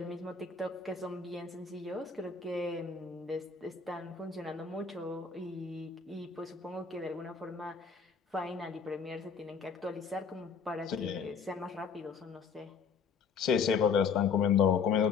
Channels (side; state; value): right; quieter; 5.7 dB